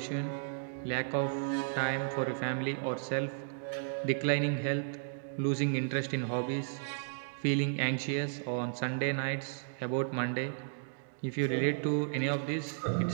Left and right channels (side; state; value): left; silent; digital silence